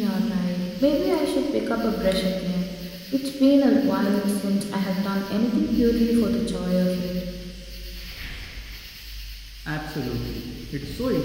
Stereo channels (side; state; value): both; identical; correlation 1.00